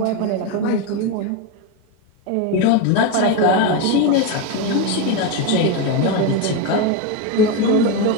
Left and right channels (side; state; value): both; different; correlation 0.04